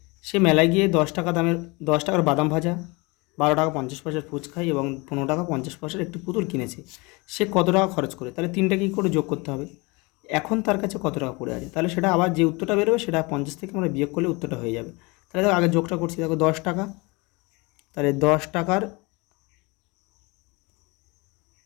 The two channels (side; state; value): right; quieter; 26.4 dB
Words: সে মেলায় গিয়ে 10 টাকা দামের 10 টাকার বাদাম ভাজা, 12 টাকা 50 পয়সার ফুচকাই এবং 15 টাকা 50 পয়সার একটি পুতুল কিনেছে। সে কত টাকা খরচ করে? তাহলে 3টা কী করে যোগ করতে হবে? এখন তার কাছে কত টাকা পড়ে আছে, তাহলে সেটা আবার যে উত্তরটা বেরোবে সেটা 50 থেকে আমরা বিয়োগ করলে উত্তরটা হয়ে যাবে। তাহলে দেখো আগে যোগটা করছি। দেখো 10 টাকা, তাহলে 10 টাকার